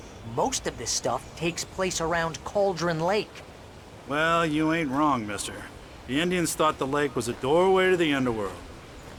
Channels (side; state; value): both; identical; correlation 1.00